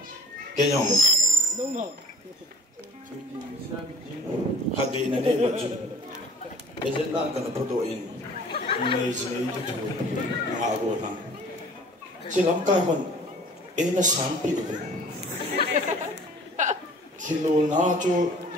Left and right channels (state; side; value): normal; both; correlation 0.48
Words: kenyang. Hagi nanti baju. Ejen nak kena fotoin. Ini itu tu ngago nang. Silam kai kon ena sampi tu. Kilo na tu